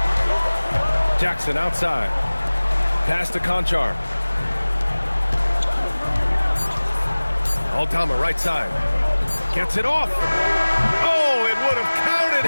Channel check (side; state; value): both; inverted; correlation -1.00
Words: Jackson outside. Pass to Conchar. Aldama right side. Gets it off. Oh, it would have counted